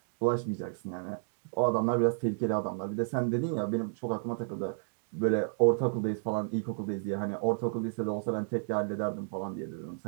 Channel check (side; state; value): left; silent; digital silence